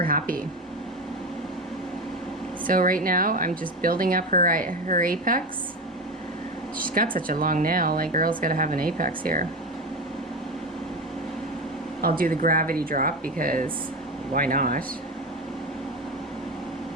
happy. So right now, I'm just building up her apex. She's got such a long nail. Like, girl's gotta have an apex here. I'll do the gravity drop because why not?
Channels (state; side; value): normal; both; correlation 0.21